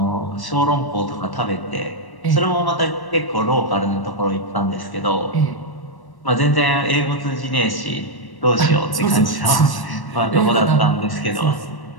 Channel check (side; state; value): right; late; 1.1 ms